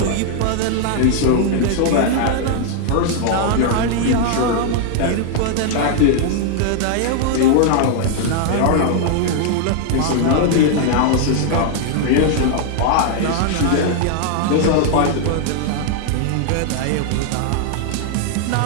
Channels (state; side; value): different; both; correlation 0.00